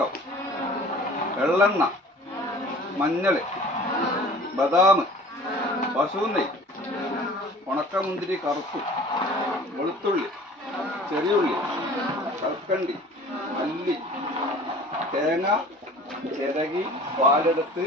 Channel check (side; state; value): both; normal; correlation 0.46